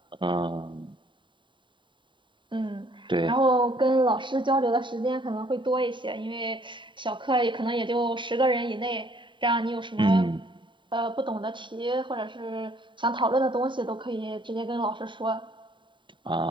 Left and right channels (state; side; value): late; left; 0.23 ms